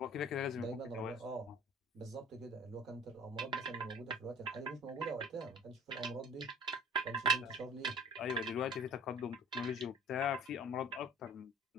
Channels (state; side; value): normal; both; correlation 0.46